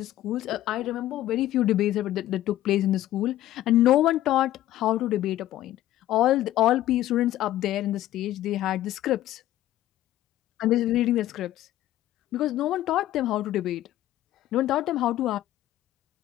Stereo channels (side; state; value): right; quieter; 13.9 dB